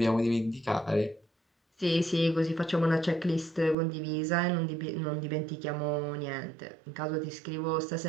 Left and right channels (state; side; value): drops out; left; at 3.8 s